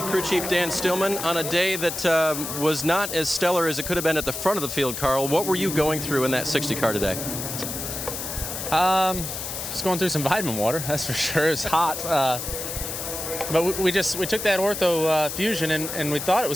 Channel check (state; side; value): noise; left; hiss, 6 dB below the sound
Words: crew chief Dan Stillman on a day that was not as stellar as it could have been at the front of the field. Carl, what were you going through in that 60 car today? Just going through some vitamin water, that's for sure. It was hot. But we took that Ortho Fusion and we thought it